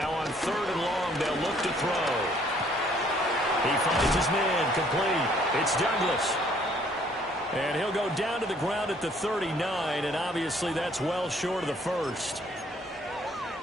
on 3rd and long, they'll look to throw. He finds his man complete. It's Douglas. And he'll go down to the ground at the 39, and obviously that's well short of the first.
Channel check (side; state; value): both; normal; correlation 0.62